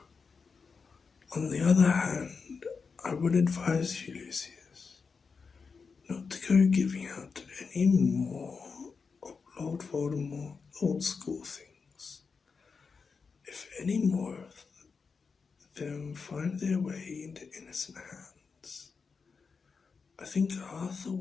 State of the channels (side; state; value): right; quieter; 5.1 dB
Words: On the other hand, I would advise you, Lucius, not to go giving out any more of Lord Voldemort's old school things. If any more of them find their way into innocent hands, I think Arthur